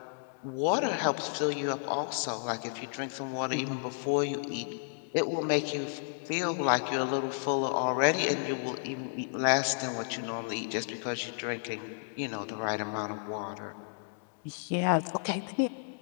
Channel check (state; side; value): silent; right; digital silence